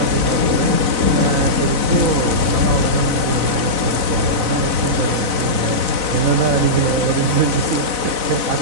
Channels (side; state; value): left; late; 4.0 ms